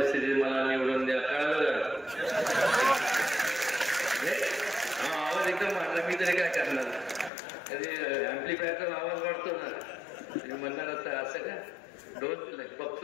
मला निवडून द्या. कळलं का? हा आवाज एकदम वाढला, मी तरी काय करणार? कधी ऍम्प्लिफायरचा आवाज वाढतो ना, तुम्ही म्हणणार असता असं का? डोस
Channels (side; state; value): right; drops out; at 7.3 s